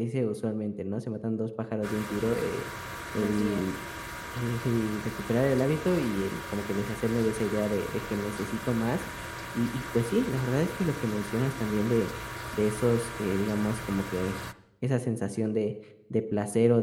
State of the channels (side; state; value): both; identical; correlation 1.00